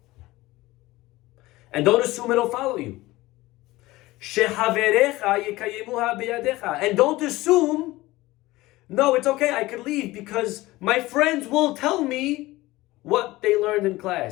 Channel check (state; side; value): quieter; right; 18.9 dB